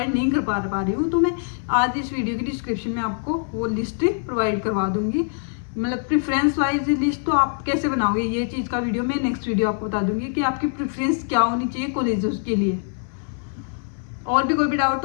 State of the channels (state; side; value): silent; right; 63 dB below the other